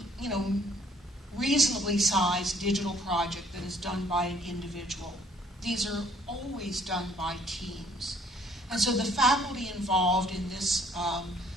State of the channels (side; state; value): both; normal; correlation 0.62